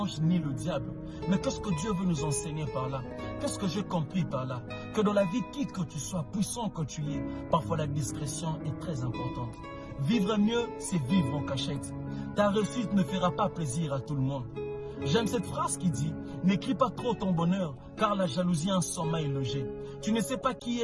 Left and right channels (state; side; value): identical; both; correlation 1.00